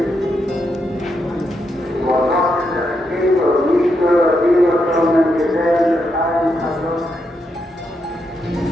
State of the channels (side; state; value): both; normal; correlation 0.81